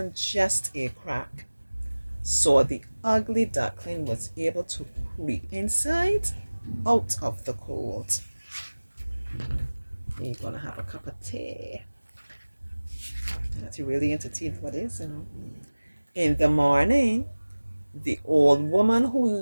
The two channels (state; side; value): inverted; both; correlation -1.00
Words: just a crack, so the ugly duckling was able to creep inside out of the cold. You're gonna have a cup of tea. That's really into tea, what is, you know. In the morning, the old woman who